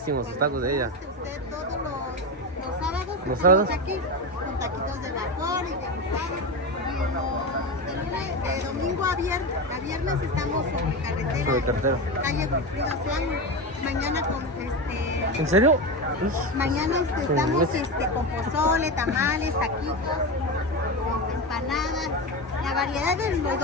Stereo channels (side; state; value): both; normal; correlation 0.19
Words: sus tacos de ella. Usted todos los sábados ¿Los sábados? aquí con taquitos de vapor y de guisado. Y de domingo a viernes estamos sobre carretera. Sobre carretera. Calle Wilfrido Slan. Mañana con ¿En serio? mañana estamos con pozole, tamales, taquitos, empanadas. La variedad de los